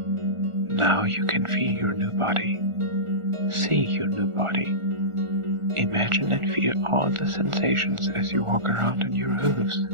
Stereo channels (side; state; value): left; late; 1.4 ms